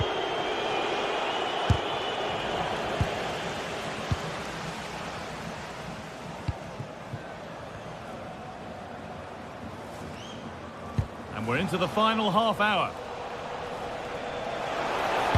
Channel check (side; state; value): both; identical; correlation 1.00